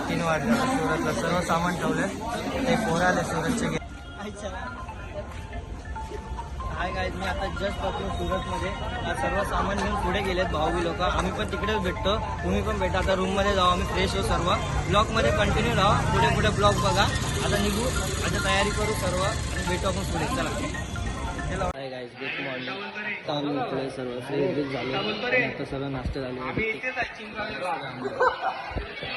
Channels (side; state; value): both; identical; correlation 1.00